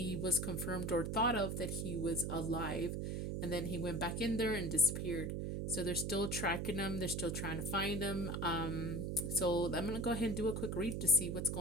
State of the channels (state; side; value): noise; right; hum, 2 dB below the sound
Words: was confirmed or thought of that he was alive, and then he went back in there and disappeared. So they're still tracking him. They're still trying to find him. So I'm gonna go ahead and do a quick read to see what's